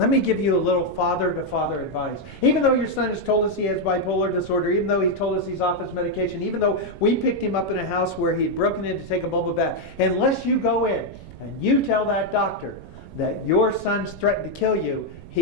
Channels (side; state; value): right; noise; rumble, 17 dB below the sound